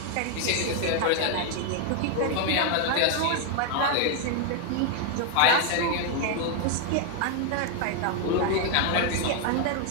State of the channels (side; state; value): both; different; correlation 0.00